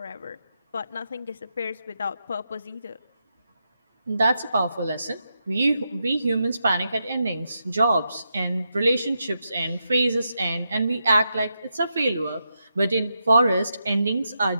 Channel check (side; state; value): both; inverted; correlation -0.85